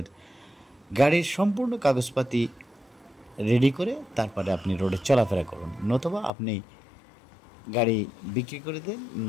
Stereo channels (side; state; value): right; drops out; at 6.3 s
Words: গাড়ির সম্পূর্ণ কাগজপাতি রেডি করে তারপরে আপনি রোডে চলাফেরা করুন, নতুবা আপনি গাড়ি বিক্রি করে দেন,